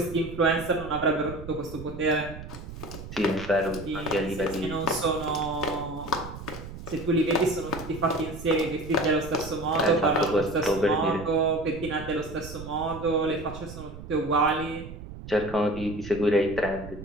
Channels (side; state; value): right; noise; rumble, 12 dB below the sound